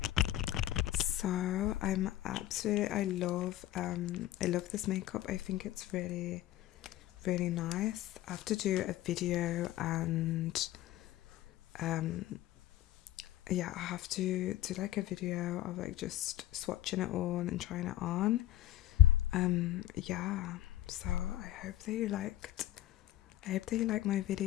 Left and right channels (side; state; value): right; quieter; 14.0 dB